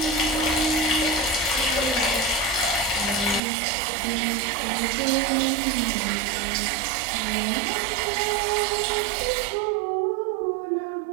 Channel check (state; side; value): drops out; left; at 3.4 s